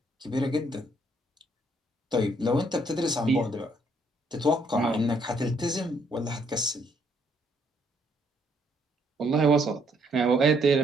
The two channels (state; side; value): normal; both; correlation 0.69